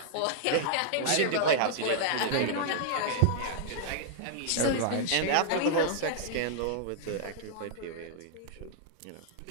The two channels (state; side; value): different; both; correlation -0.01